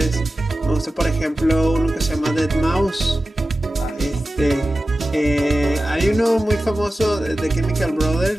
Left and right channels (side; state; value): both; normal; correlation 0.94